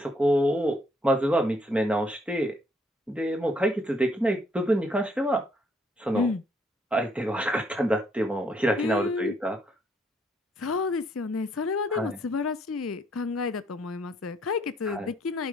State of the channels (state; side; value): normal; both; correlation 0.69